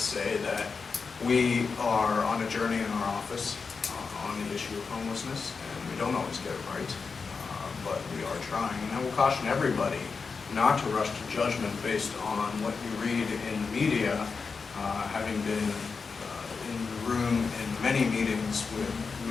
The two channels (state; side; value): quieter; right; 5.0 dB